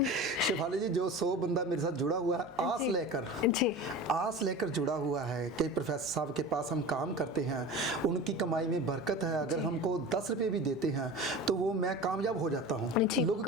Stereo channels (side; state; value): both; normal; correlation 0.33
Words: शेफाली जी, जो 100 बंदा मेरे साथ जुड़ा हुआ है आस लेकर जुड़ा हुआ है कि प्रोफेसर साहब के पास हम काम करते हैं, उनकी कमाई में बरकत है, अगर हमको 10 रुपये भी देते हैं तो वो मैं कामयाब हो जाता हूँ। लोगों